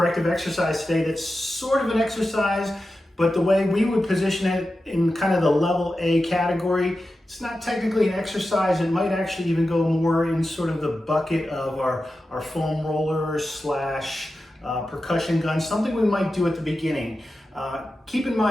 exercise today that's sort of an exercise, but the way we would position it in kind of the level A category, it's not technically an exercise. It might actually even go more in sort of the bucket of our foam rollers slash percussion gun, something we might do at the beginning. Keep in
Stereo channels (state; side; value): normal; both; correlation 0.92